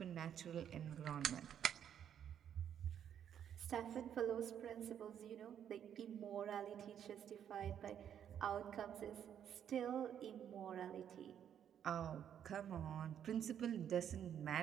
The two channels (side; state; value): left; quieter; 9.3 dB